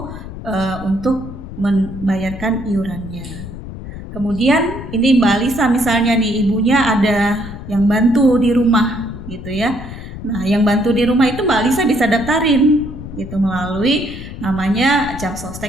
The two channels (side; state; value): left; noise; rumble, 11 dB below the sound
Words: untuk membayarkan iurannya. Kemudian ini Mbak Alisa misalnya nih, ibunya ada yang bantu di rumah gitu ya. Nah, yang bantu di rumah itu Mbak Alisa bisa daftarin gitu melalui namanya Jam